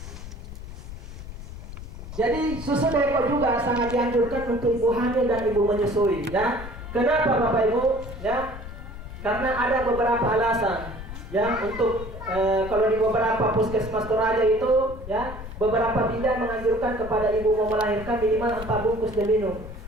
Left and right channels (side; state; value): left; noise; rumble, 11 dB below the sound